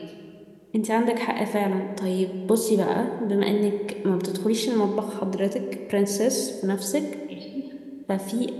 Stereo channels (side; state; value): both; identical; correlation 1.00